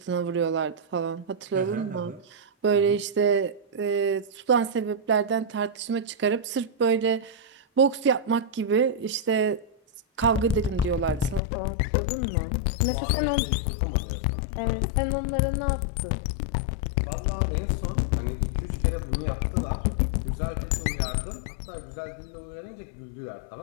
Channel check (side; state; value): right; drops out; at 11.4 s